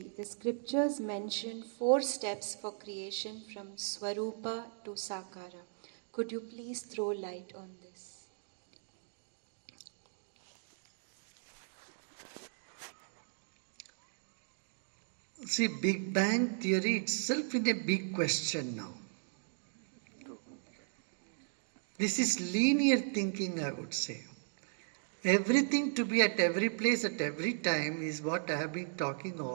the scriptures mention 4 steps for creation from Swarupa to Sakara. Could you please throw light on this? See, Big Bang theory itself is a big question now. This is linear thinking, I would say. Everything to be at every place at every time is what I have been talking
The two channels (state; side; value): silent; left; digital silence